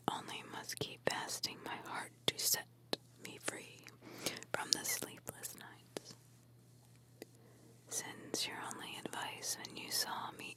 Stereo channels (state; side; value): identical; both; correlation 1.00